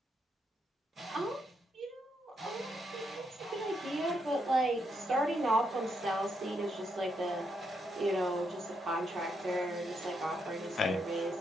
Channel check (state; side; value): normal; both; correlation 0.79